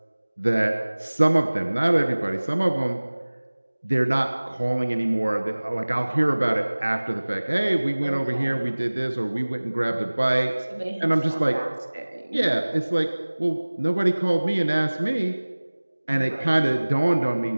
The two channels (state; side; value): inverted; both; correlation -1.00